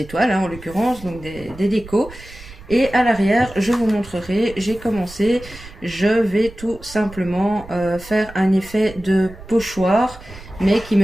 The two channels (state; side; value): noise; right; rumble, 17 dB below the sound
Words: hein, en l'occurrence, donc des décos. Et à l'arrière, je vous montrerai, j'ai commencé, je vais tout simplement faire un effet de pochoir, mais qui